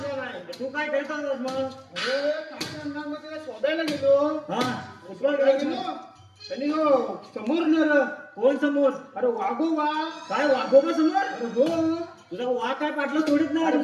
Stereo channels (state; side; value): identical; both; correlation 1.00